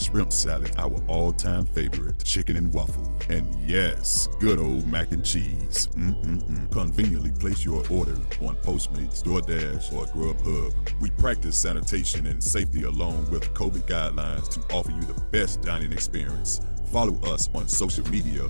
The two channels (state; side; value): inverted; both; correlation -1.00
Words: salad, our all-time favorite, chicken and waffle, and yes, good old mac and cheese. Conveniently place your order on Postmates, DoorDash, or Grubhub. We practice sanitation and safety along with COVID guidelines to offer you the best dining experience. Follow us on social media